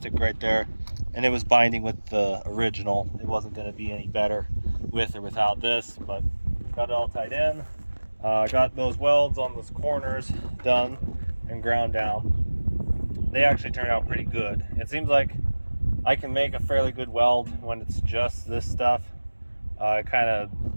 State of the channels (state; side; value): inverted; both; correlation -1.00